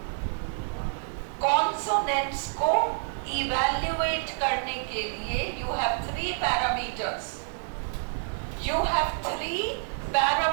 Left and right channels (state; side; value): silent; left; 59 dB below the other